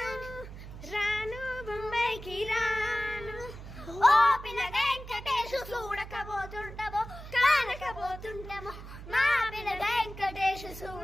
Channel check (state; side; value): noise; right; hum, 13 dB below the sound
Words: చూడకబోతుంటామో కానకబోతుంటామో మా పిల్ల వెంకటేశ్